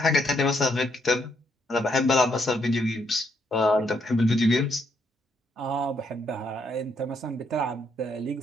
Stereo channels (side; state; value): both; normal; correlation 0.74